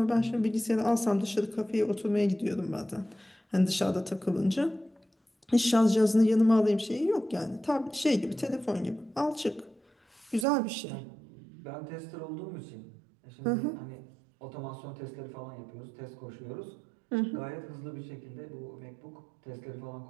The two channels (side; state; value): left; drops out; at 10.5 s